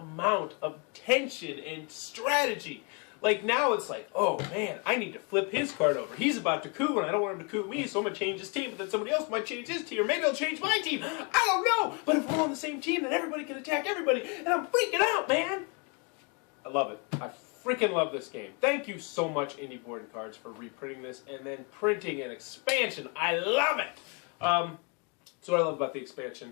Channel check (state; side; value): quieter; right; 32.6 dB